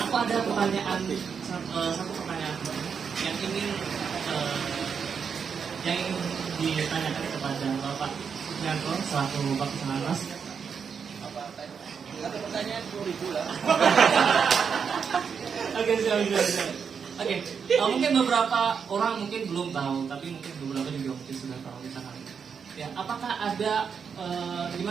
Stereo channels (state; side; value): quieter; left; 6.5 dB